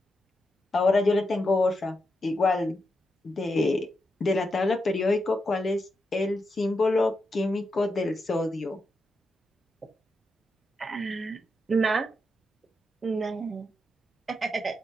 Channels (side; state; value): both; normal; correlation 0.85